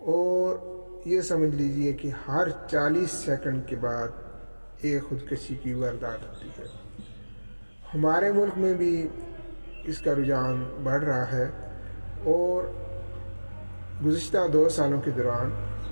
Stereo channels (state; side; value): inverted; both; correlation -1.00